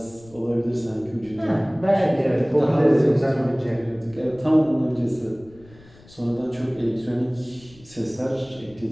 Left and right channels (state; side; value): noise; left; rumble, 24 dB below the sound